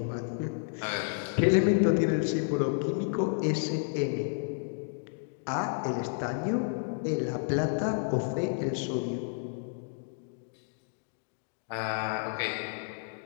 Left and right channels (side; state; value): right; silent; digital silence